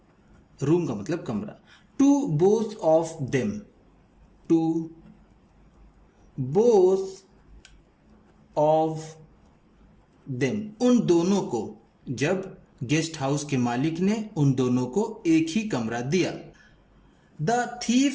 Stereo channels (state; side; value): identical; both; correlation 1.00